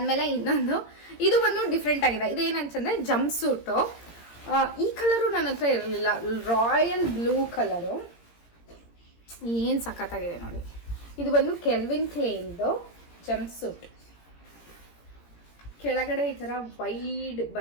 ಇನ್ನೊಂದು, ಇದು ಬಂದು ಡಿಫ್ರೆಂಟ್ ಆಗಿದೆ. ಇದೇನಂತಂದರೆ ಜಂಪ್ ಸೂಟು. ಈ ಕಲರು ನನ್ನ ಹತ್ರ ಇರಲಿಲ್ಲ, ರಾಯಲ್ ಬ್ಲೂ ಕಲರು. ಏನು ಸಖತ್ತಾಗಿದೆ ನೋಡಿ. ಇದು ಬಂದು ಕೆಲ್ವಿನ್ ಕ್ಲೇನ್ದು ಜಂಪ್ ಸೂಟ್. ಕೆಳಗಡೆ ಈ ಥರ ವೈಡ್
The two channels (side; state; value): right; late; 17 ms